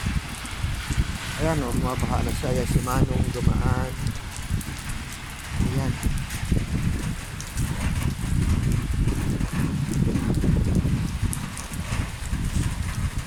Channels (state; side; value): identical; both; correlation 1.00